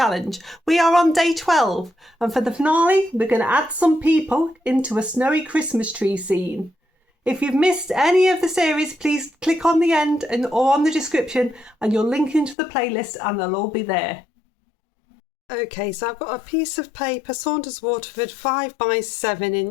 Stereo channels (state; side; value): drops out; right; at 12.6 s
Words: We are on day 12 and for the finale we're going to add some people into a snowy Christmas tree scene. If you've missed any of the series, please click on the end or on the description and you'll link into the playlist and they'll all be there. Okay, so I've got a piece of paper, Saunders Waterford 5 by 7